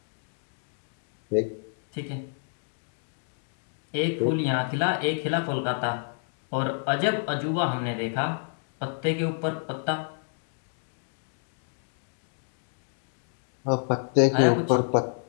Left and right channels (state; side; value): silent; right; digital silence